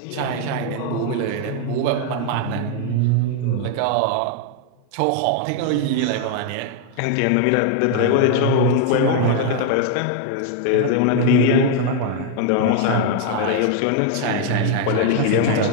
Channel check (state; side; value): different; both; correlation 0.00